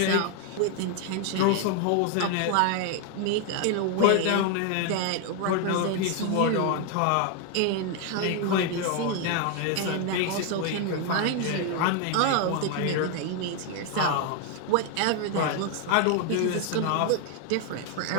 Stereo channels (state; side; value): different; both; correlation 0.01